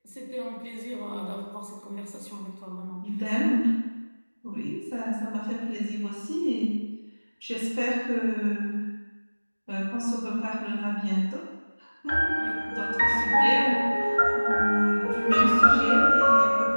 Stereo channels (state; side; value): inverted; both; correlation -1.00